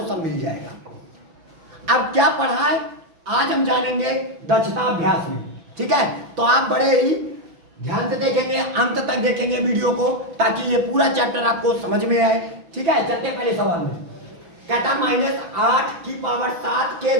सब मिल जाएगा। अब क्या पढ़ा है आज हम जानेंगे दक्षता अभ्यास में, ठीक है। तो आप बड़े ही ध्यान से देखेंगे, अंत तक देखेंगे वीडियो को ताकि ये पूरा चैप्टर आपको समझ में आए, ठीक है। चलते पहले सवाल में। कहता -8 की पावर 7 के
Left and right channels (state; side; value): late; left; 6.0 ms